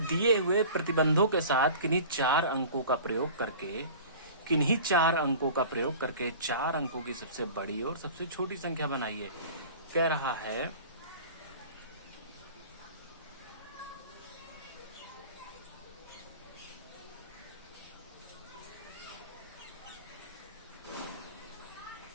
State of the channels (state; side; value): inverted; both; correlation -0.40